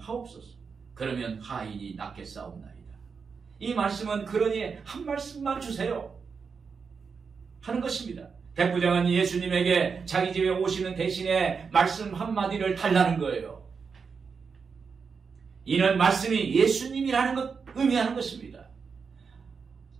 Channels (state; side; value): quieter; left; 5.6 dB